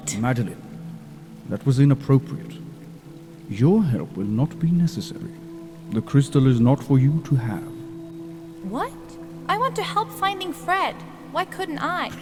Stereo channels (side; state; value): both; identical; correlation 1.00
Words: Madeline, that was inappropriate. Your help will not be necessary. The crystal is not for you to have. What? I want to help finding Fred. Why couldn't I?